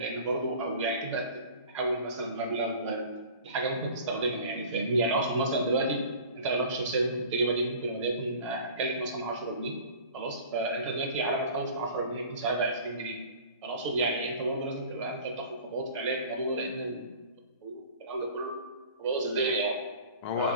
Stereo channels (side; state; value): both; inverted; correlation -0.43